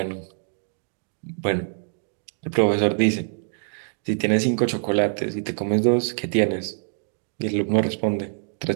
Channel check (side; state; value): left; silent; digital silence